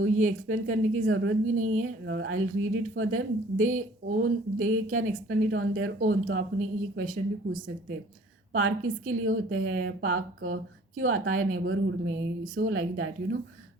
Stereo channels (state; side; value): normal; both; correlation 0.53